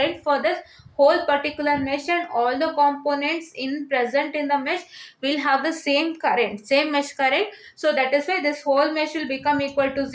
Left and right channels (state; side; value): identical; both; correlation 1.00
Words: for this whole particular mesh, and all the components in present in the mesh will have the same current, same mesh current. So that is why this whole mesh will become equal to